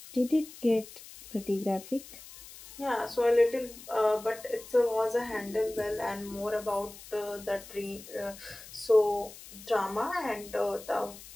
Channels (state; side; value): noise; left; hiss, 17 dB below the sound